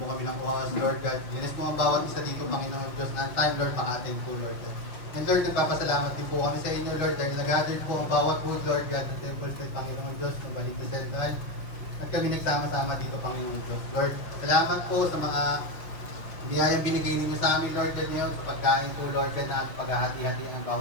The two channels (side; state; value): right; late; 5.5 ms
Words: kami ng oras, Lord God. Linis mo ang bawat isa dito, Panginoon Diyos, na ang time, Lord, maka-attend po, Lord God. And Lord, nagpapasalamat din po kami sa inyo, Lord, dahil nag-gather po ang bawat food, Lord God, ng Temple State, Panginoon Diyos, ng Balik na Central. At kami nagsama-sama dito, Panginoon Diyos. Lord, salamat po sa mga biyayang binigay ninyo sa amin, Lord God, ngayon, sa pagkain po, Lord God, na paghahati-hati ng